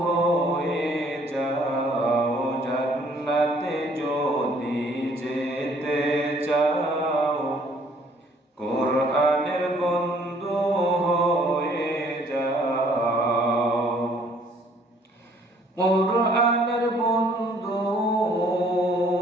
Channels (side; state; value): both; normal; correlation 0.61